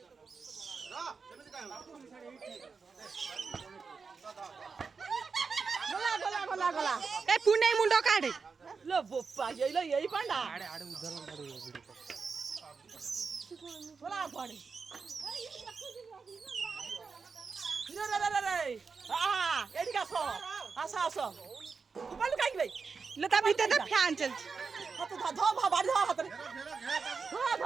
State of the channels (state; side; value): quieter; left; 5.1 dB